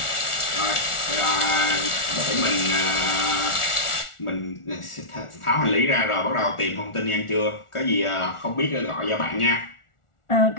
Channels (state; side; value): late; right; 1.4 ms